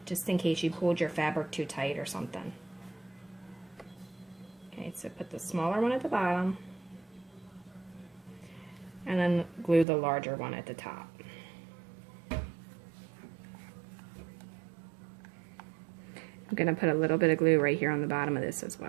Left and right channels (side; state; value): left; drops out; at 9.9 s